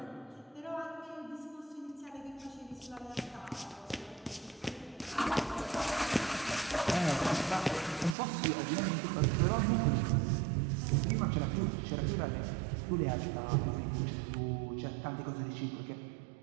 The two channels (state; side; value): drops out; left; at 8.2 s